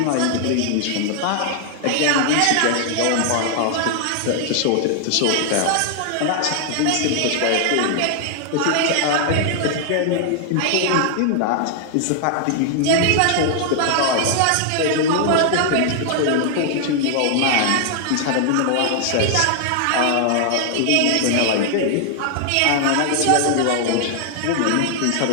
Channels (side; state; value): both; different; correlation 0.00